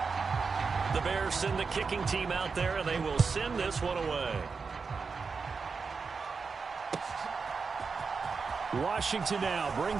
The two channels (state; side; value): quieter; left; 5.0 dB